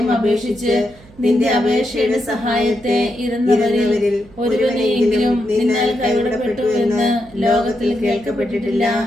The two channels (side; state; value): right; noise; hum, 24 dB below the sound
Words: അപേക്ഷിച്ച് നിന്റെ അപേക്ഷയുടെ സഹായത്തെ ഇരുന്നവരിൽ ഒരുവനെയെങ്കിലും നിന്നാൽ കൈവിടപ്പെട്ടു എന്ന് ലോകത്തിൽ കേൾക്കപ്പെട്ടിട്ടില്ല